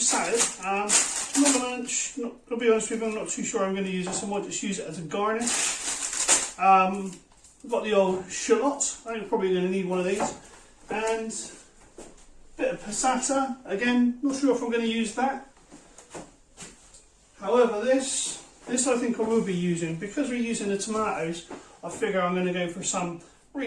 I'll be honest with you, I'm not too sure I'm going to use this. I might just use it as a garnish. I've got the old shallots. I'm probably going to need one of these, and a bit of passata. Again, not sure if I'm going to use that. However, this I think I will be using, because we're using the tomatoes. I figure I'm going to go for some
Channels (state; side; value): identical; both; correlation 1.00